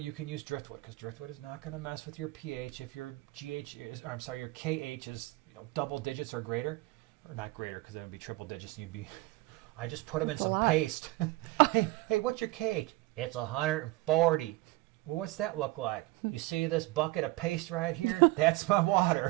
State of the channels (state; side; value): quieter; left; 20.3 dB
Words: can use driftwood, because driftwood is not going to mess with your pH. If your your KH is double digits or greater, or not greater, because it would be triple digits, and you'd be. I just put them in some paste. hey, what's your KH? It's 140. Well, what's that look like? You see this bucket of paste right here? That's my